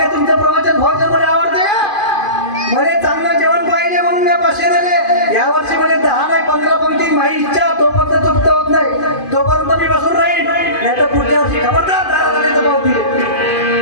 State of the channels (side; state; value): right; late; 2.5 ms